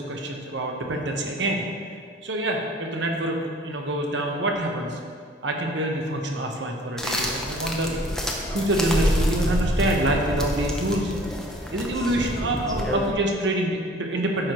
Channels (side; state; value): both; normal; correlation 0.49